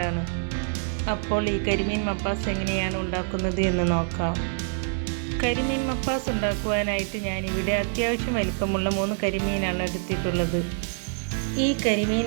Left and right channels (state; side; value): silent; left; digital silence